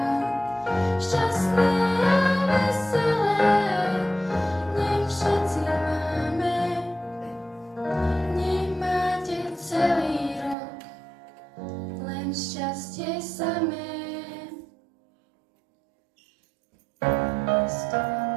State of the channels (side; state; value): left; drops out; at 10.6 s